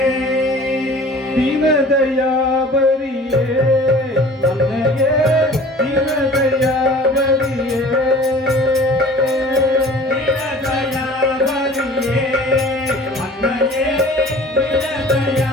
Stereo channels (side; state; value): both; normal; correlation 0.45